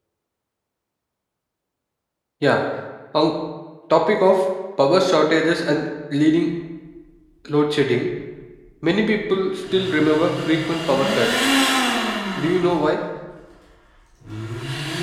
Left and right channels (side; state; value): both; identical; correlation 1.00